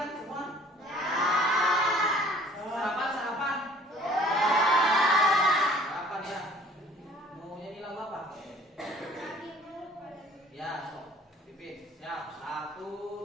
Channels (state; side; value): normal; both; correlation 0.52